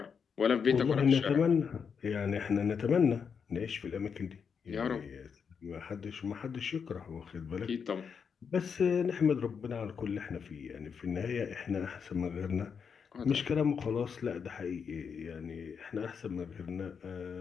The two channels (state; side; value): quieter; right; 6.4 dB